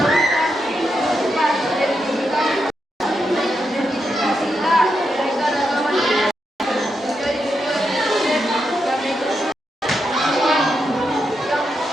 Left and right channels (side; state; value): both; normal; correlation 0.84